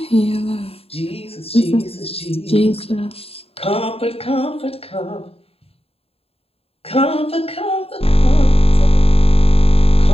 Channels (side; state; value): right; late; 0.28 ms